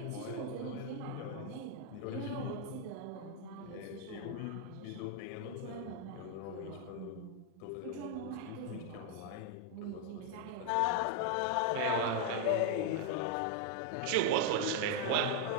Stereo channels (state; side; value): different; both; correlation 0.00